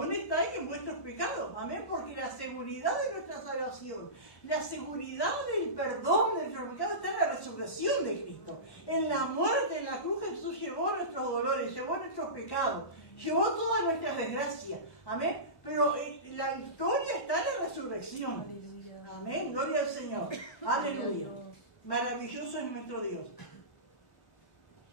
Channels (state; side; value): late; right; 1.1 ms